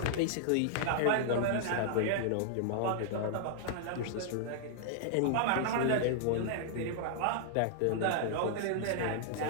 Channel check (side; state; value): both; different; correlation -0.01